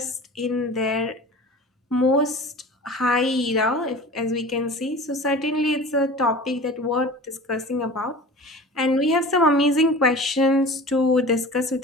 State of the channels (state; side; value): normal; both; correlation 0.38